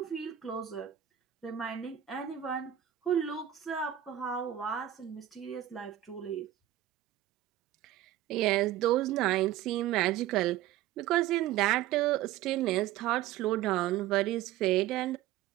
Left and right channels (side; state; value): left; quieter; 12.7 dB